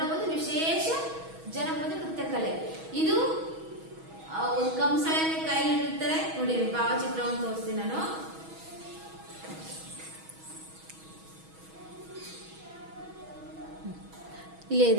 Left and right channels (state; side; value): late; left; 6.2 ms